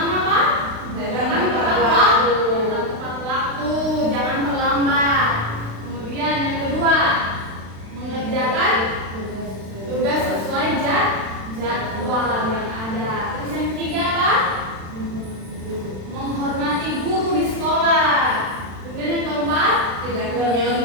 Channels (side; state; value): left; late; 36 ms